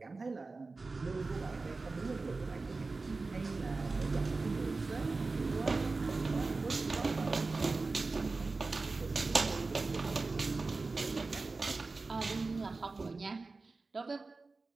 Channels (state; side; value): quieter; left; 3.7 dB